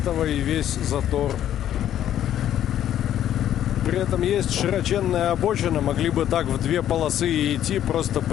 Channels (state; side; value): quieter; right; 11.2 dB